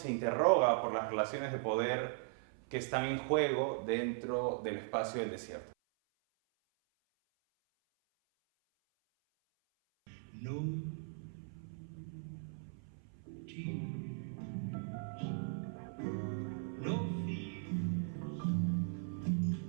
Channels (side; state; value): left; silent; 52 dB below the other